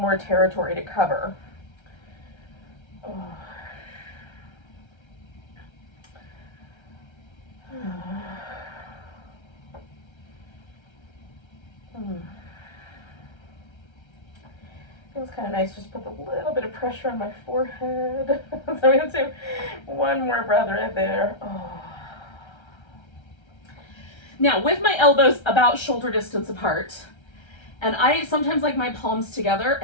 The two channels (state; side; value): late; right; 1.3 ms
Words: territory to cover. Feels kind of nice. Just put a little bit of pressure on my forehead. So I'm going to do one more breath right there. Now, with my elbows about shoulder distance apart, and I sometimes like my palms together,